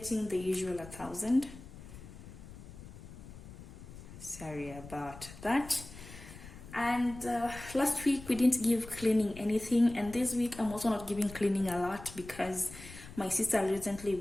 the usual 1,000. Sorry about that. And last week we didn't give cleaning anything, and this week I'm also not giving cleaning a lot because my sister recently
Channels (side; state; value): left; noise; rumble, 15 dB below the sound